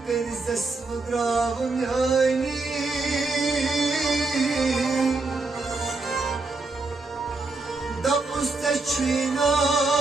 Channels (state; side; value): quieter; left; 3.5 dB